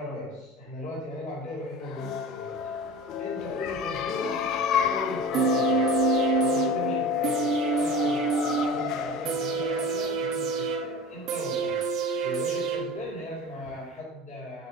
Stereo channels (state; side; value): normal; both; correlation 0.34